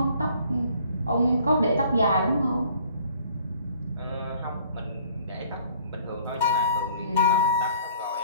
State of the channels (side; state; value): both; inverted; correlation -0.56